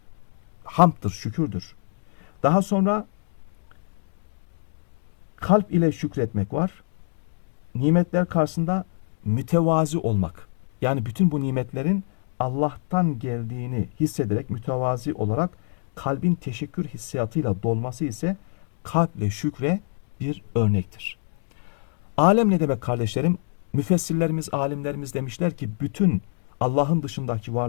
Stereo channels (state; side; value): silent; right; digital silence